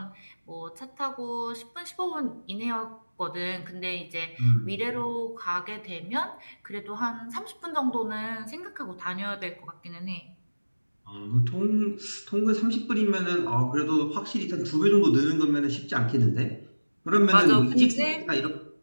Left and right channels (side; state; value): both; inverted; correlation -1.00